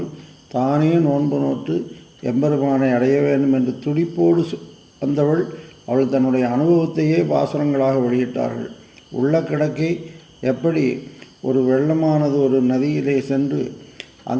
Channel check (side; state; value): both; identical; correlation 1.00